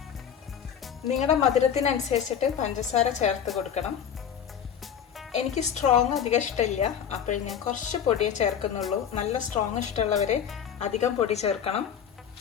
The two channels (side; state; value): right; quieter; 8.4 dB